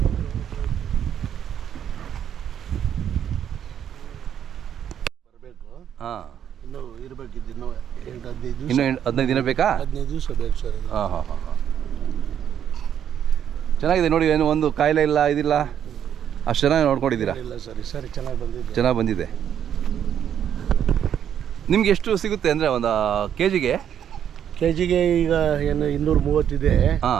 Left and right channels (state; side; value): quieter; left; 9.3 dB